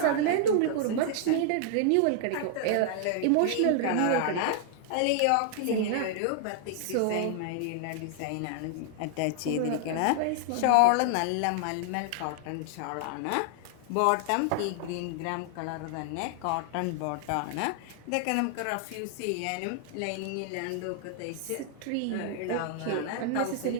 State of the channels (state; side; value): different; both; correlation 0.00